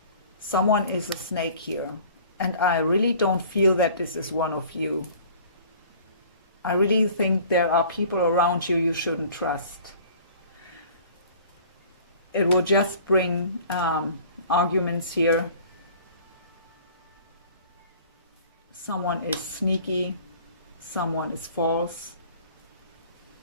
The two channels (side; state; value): both; inverted; correlation -0.49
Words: Someone is a snake here. And I really don't feel that this is one of you. I really think there are people around you you shouldn't trust. It will just bring arguments here. Someone is sneaky. Someone is false.